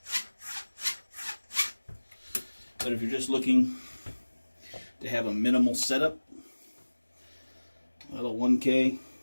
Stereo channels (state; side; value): inverted; both; correlation -1.00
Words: But if you're just looking to have a minimal setup, well, a 1K